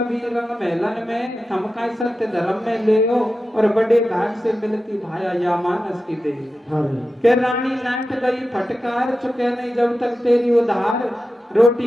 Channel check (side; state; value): both; normal; correlation 0.92